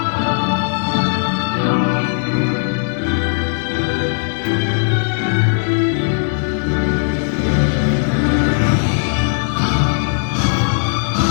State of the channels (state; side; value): silent; right; 68 dB below the other